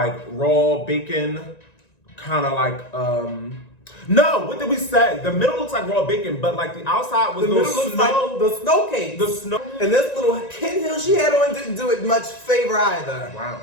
raw bacon, kind of like, no, what did we say? The middle looks like raw bacon, but like the outside was The middle looks like the snow cake. The snow. And this little Ken Hill she had on didn't do it much favor either. Wow.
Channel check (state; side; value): late; right; 1.9 ms